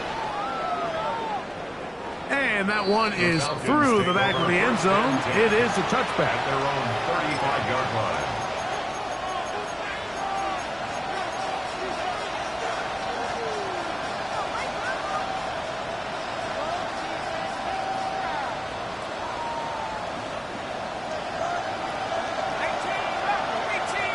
And that one is through the back of the end zone. It is a touchback. At their own 35-yard line.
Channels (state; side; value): identical; both; correlation 1.00